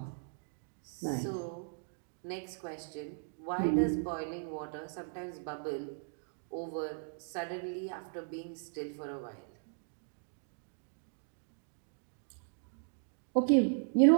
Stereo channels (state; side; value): silent; left; digital silence